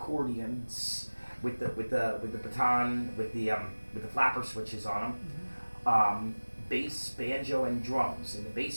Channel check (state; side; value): inverted; both; correlation -1.00